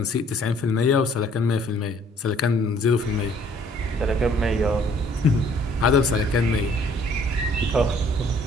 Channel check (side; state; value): both; normal; correlation 0.59